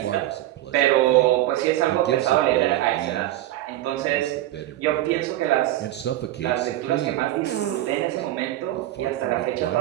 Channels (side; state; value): left; quieter; 14.7 dB